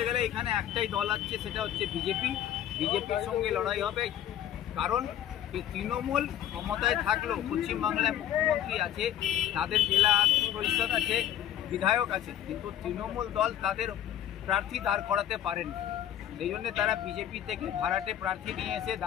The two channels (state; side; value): quieter; right; 11.2 dB